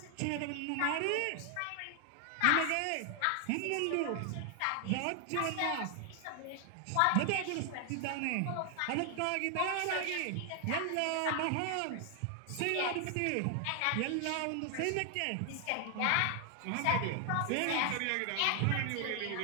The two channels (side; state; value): both; different; correlation 0.00